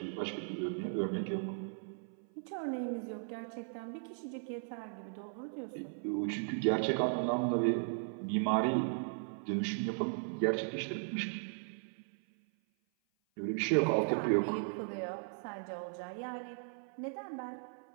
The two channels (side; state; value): left; silent; 53 dB below the other